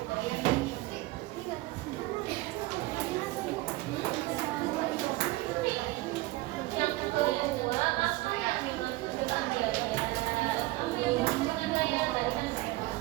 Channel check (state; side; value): quieter; left; 19.6 dB